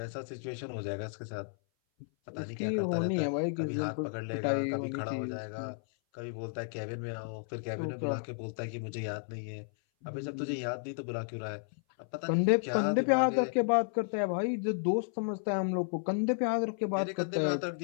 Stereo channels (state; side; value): silent; right; 56 dB below the other